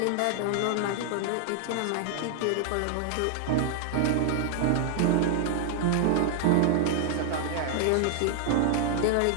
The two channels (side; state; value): both; different; correlation 0.00